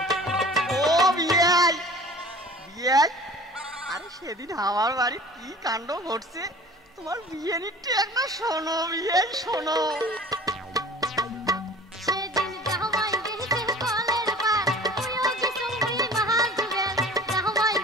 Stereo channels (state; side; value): normal; both; correlation 0.44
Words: সেদিন আমার বাড়ি কি কাণ্ড ঘটছে তোমার বিয়ে নিতে একটা শোনো বিয়ে শোনো